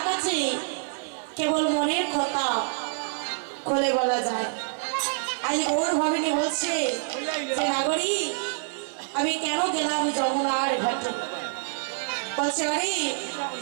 কাছে কেবল মনের কথা খুলে বলা যায়। আজ ওর ভাবিনী বলছে যে নাগরী আমি কেন গেলাম যমুনার ঘাটে, বলছে আরে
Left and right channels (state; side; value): silent; left; 60 dB below the other